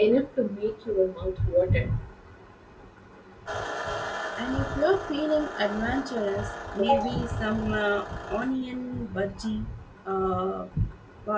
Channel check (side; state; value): both; identical; correlation 1.00